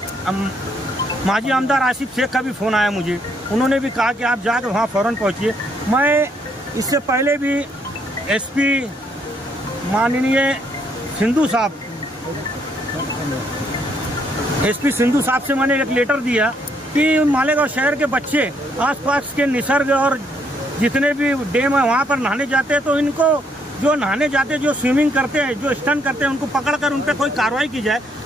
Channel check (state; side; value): normal; both; correlation 0.71